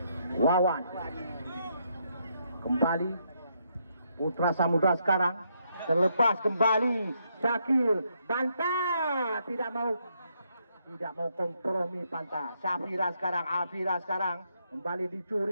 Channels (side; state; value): both; inverted; correlation -0.76